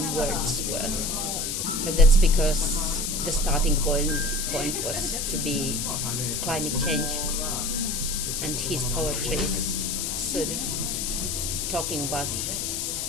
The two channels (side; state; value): left; noise; hiss, 1 dB below the sound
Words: Wordsworth. But that's because the starting point was to be climate change, and his poetry is sort of talking about